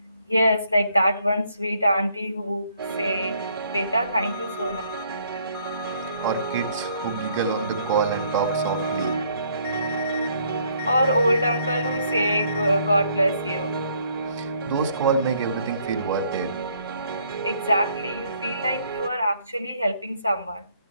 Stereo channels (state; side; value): inverted; both; correlation -0.66